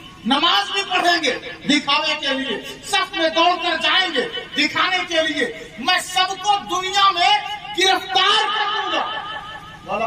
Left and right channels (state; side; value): identical; both; correlation 1.00